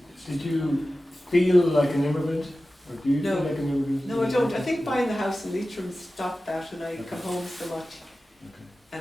you feel like an immigrant, or do you No. feel like an immigrant? No, I don't. I think buying the house in Leitrim stopped that, and I come home so much.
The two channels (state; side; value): normal; both; correlation 0.95